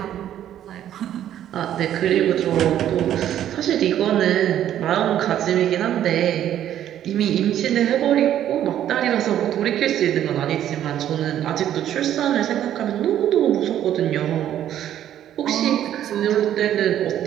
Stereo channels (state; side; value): quieter; left; 11.2 dB